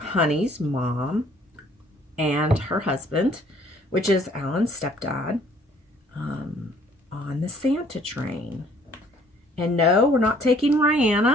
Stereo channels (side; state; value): both; normal; correlation 0.59